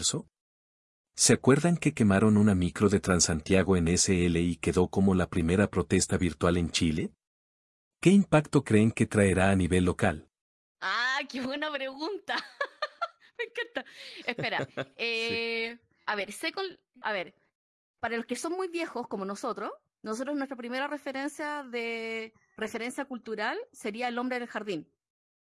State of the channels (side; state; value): both; identical; correlation 1.00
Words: ¿Se acuerdan que quemaron una micro de Transantiago en SL y quedó como la primera protesta virtual en Chile? ¿Qué impacto creen que traerá a nivel local? Ah, qué buena pregunta. Me encanta. Espera. Sí. A ver, para los que son muy viejos como nosotros nuestra primera referencia cultural sería El hombre del jardín.